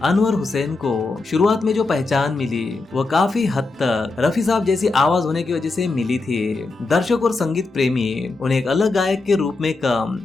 अनवर हुसैन को शुरुआत में जो पहचान मिली वो काफी हद तक रफी साहब जैसी आवाज होने की वजह से मिली थी। दर्शक और संगीत प्रेमी उन्हें एक अलग गायक के रूप में कम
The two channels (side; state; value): right; quieter; 3.6 dB